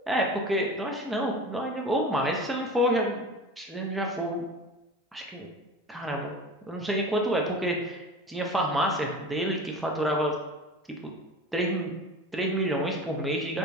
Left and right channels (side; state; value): both; normal; correlation 0.35